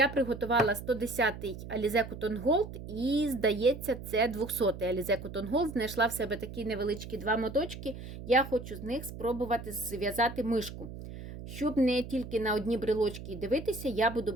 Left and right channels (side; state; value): right; noise; hum, 11 dB below the sound